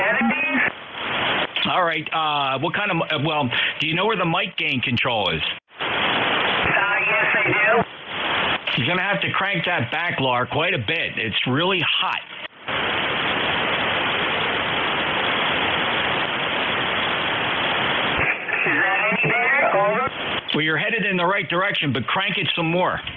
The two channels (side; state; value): both; identical; correlation 1.00